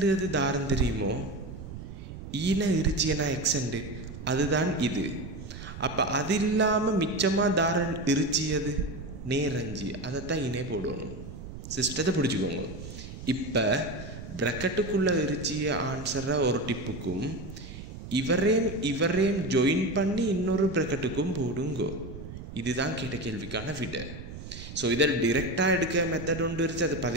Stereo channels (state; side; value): noise; right; rumble, 11 dB below the sound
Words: தாரம் தெரியுமோ? ஈன இருச்சியனா எக்ஸண்டு அதுதான் இது. அப்போ அது இல்லாமல் மிச்சமாக தாரம் இருச்சியது நேரஞ்சி அதைத்தான் இனே போடணும். சிஸ்டத்தை பிடிச்சிக்கோங்க. இப்போ ப்ராக்கெட்டுக்குள்ளே இருச்சிய ஆன்சரை ஒரு டிப்புக்கும் இவரேம் ஜாயின் பண்ணி இன்னொரு ப்ராக்கெட்டுக்கும் போடுங்கோ. இதுதான் கேட்ட கேள்விக்கான விட. ஸோ இதில் டிரெக்டாக எடுக்க மெத்தட் ஒன்று இருந்துச்சு. அது